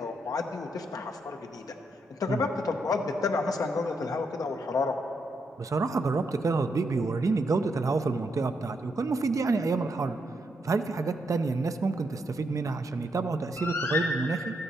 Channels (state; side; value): normal; both; correlation 0.80